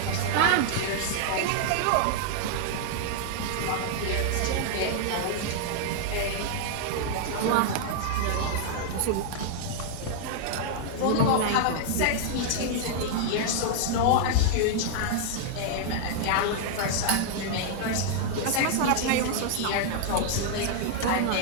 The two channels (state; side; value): different; both; correlation -0.01